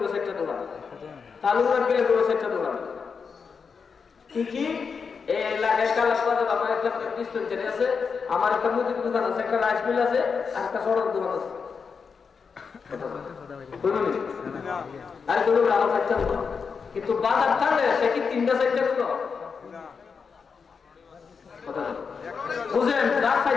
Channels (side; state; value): right; quieter; 5.7 dB